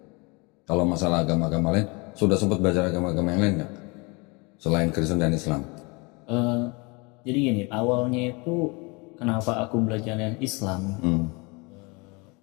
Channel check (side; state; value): right; quieter; 28.4 dB